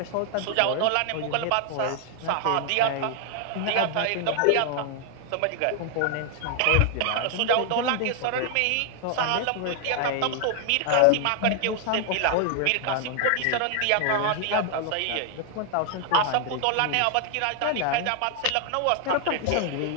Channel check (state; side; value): different; both; correlation 0.00